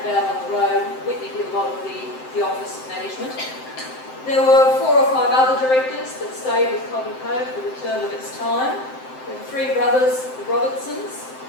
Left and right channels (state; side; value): late; right; 7.7 ms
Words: about on the road. Whitney did a lot of the office management. There were 4 or 5 other directors that stayed with Cobb Co for the term of its time. The 3 brothers, the Robertsons,